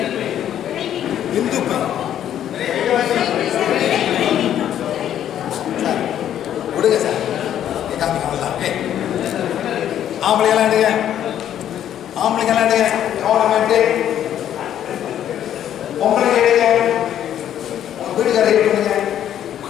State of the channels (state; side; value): quieter; right; 10.6 dB